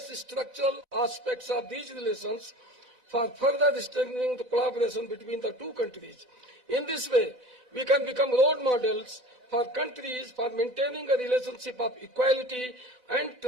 structural aspects of these relations for further strengthening the collaboration between the two countries. In this way, we can become role models for countries for maintaining a relationship of equality and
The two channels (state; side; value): late; left; 4.0 ms